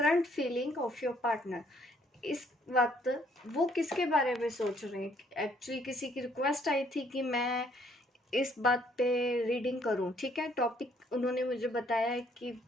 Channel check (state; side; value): normal; both; correlation 0.66